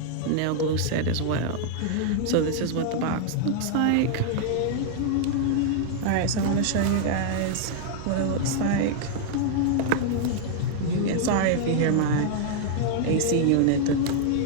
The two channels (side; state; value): both; different; correlation -0.01